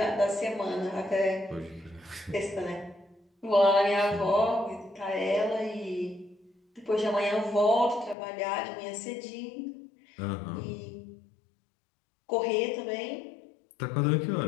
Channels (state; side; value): drops out; right; at 8.2 s